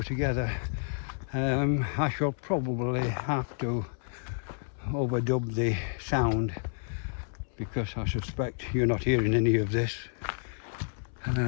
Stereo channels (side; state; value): right; silent; 58 dB below the other